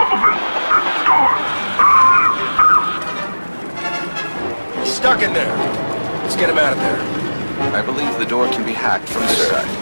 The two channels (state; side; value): inverted; both; correlation -1.00